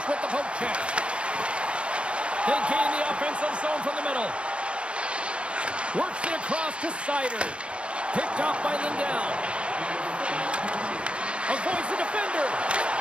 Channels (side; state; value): left; late; 0.059 ms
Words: with the poke check. They gain the offensive zone from the middle. Works it across to Sider. Picked off by Lindell. Avoids the defender.